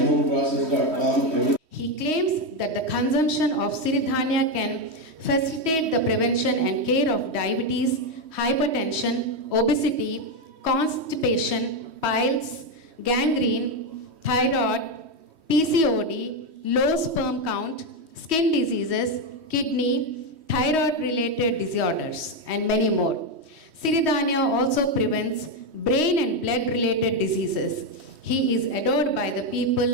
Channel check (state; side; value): late; left; 3.1 ms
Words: He claims that the consumption of Siridhanya can facilitate the prevention and care of diabetes, hypertension, obesity, constipation, piles, gangrene, thyroid, PCOD, low sperm count, skin diseases, kidney, thyroid-related disorders, and many more. Siridhanya also prevents brain and blood-related diseases. He is adored by the